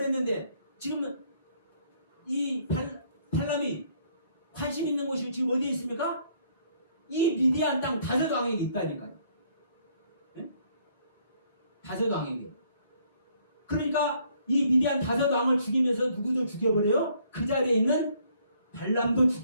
지금은 이 발람이 관심 있는 곳이 지금 어디에 있습니까? 이 미디안 땅 다섯 왕에게 있다니까요. 네? 다섯 왕에게. 그러니까 이 미디안 다섯 왕을 죽이면서 누구도 죽여버려요? 그 자리에 있는 발람도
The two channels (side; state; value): both; inverted; correlation -0.65